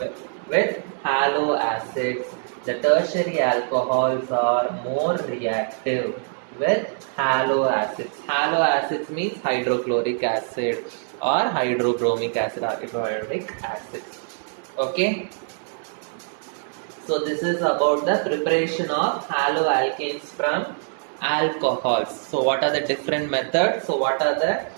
with halo acids. The tertiary alcohols are more reactive with halo acids. Halo acids means hydrochloric acid or hydrobromic acid or iodoric acid. Okay. So this is about the preparation of haloalkanes from alcohols. So what are the different methods? So what are the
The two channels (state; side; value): silent; left; 63 dB below the other